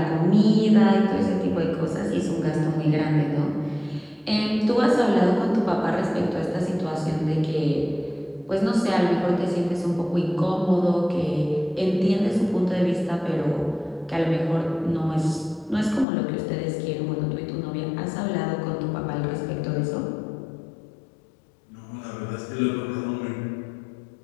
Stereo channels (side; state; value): right; drops out; at 16.1 s